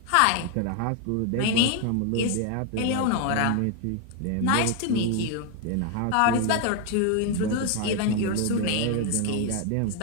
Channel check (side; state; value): both; different; correlation 0.01